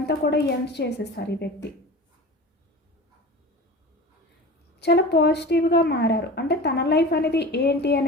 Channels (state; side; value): normal; both; correlation 0.35